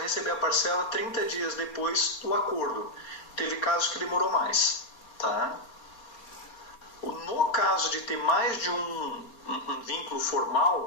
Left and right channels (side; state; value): right; late; 4.3 ms